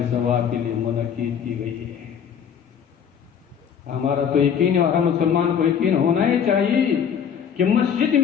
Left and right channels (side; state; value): right; quieter; 7.8 dB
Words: ثواب کے لیے منعقد کی گئی ہے۔ ہمارا تو یقین ہے، اور ہر مسلمان کو یقین ہونا ہی چاہیے کہ مسجد